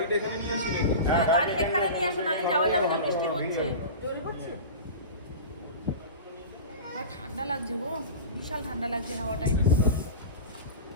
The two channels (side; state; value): both; inverted; correlation -0.31